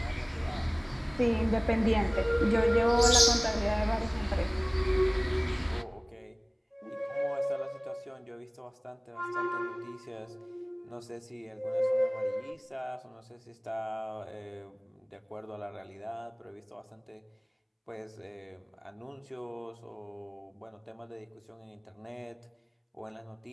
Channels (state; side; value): identical; both; correlation 1.00